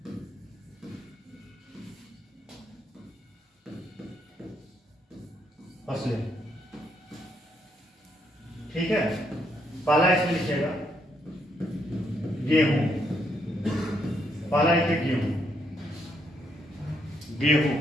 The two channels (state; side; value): normal; both; correlation 0.75